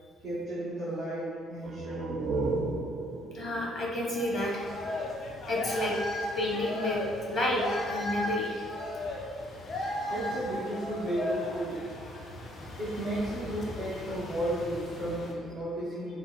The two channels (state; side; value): normal; both; correlation 0.65